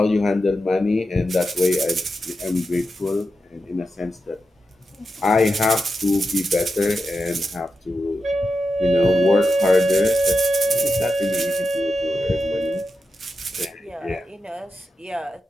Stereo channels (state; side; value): normal; both; correlation 0.89